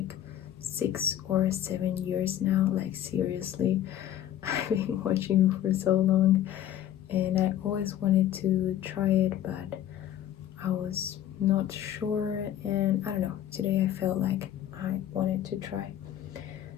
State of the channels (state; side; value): quieter; right; 11.5 dB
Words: 6 or 7 years now, like seriously. I've been watching for so long and I always wanted to try it, but I was not sure, and I don't know, today I felt like I wanted to try.